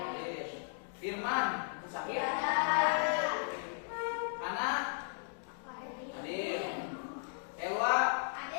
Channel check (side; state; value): right; silent; digital silence